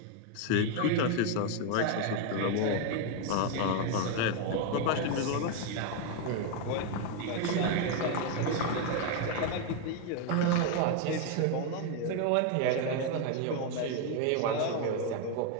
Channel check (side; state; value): both; different; correlation 0.01